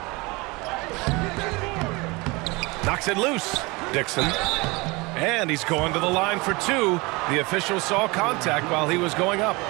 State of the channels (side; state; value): left; quieter; 25.1 dB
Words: Knocks it loose. Dixon. And he's going to the line for two. The official saw contact while he was going up.